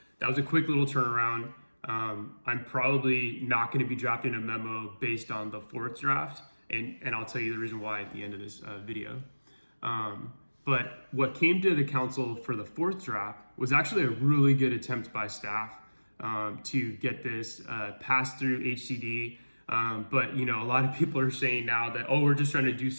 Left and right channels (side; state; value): both; inverted; correlation -1.00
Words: that was a quick little turnaround. I'm probably not going to be drafting a memo based on the fourth draft, and I'll tell you the reason why at the end of this video. But what came to the council for the fourth draft was actually a really good attempt by staff to get this passed through HCD. But a lot of people are saying now that, oh, we're just trying to do